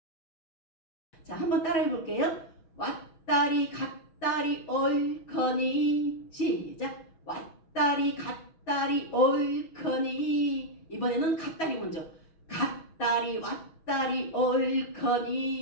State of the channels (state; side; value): late; right; 6.2 ms